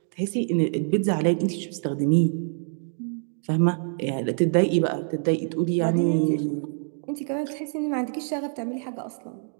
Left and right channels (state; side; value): silent; left; digital silence